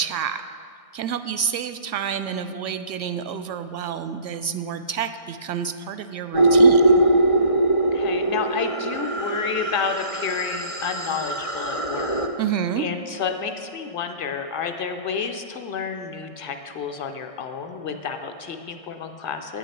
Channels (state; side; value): late; right; 1.6 ms